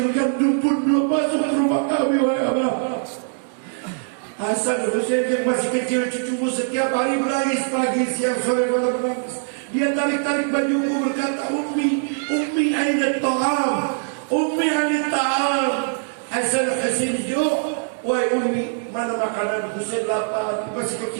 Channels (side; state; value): left; silent; digital silence